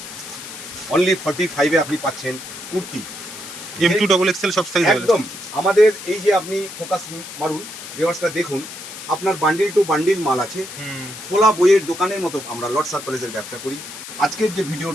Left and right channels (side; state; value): left; noise; hiss, 12 dB below the sound